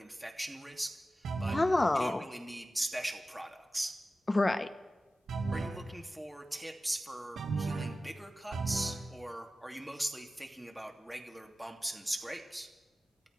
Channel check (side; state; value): both; normal; correlation 0.95